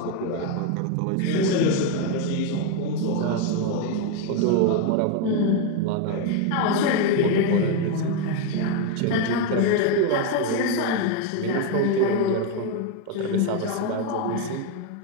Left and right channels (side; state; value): both; different; correlation 0.02